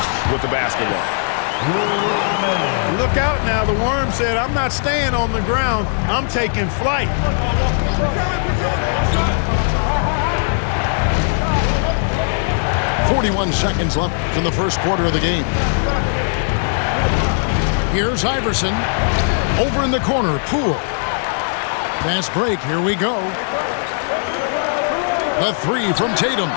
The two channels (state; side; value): silent; right; 67 dB below the other